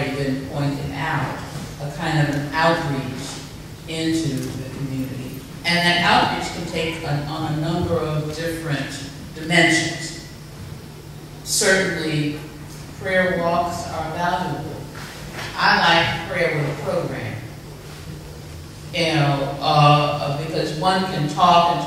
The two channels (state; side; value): identical; both; correlation 1.00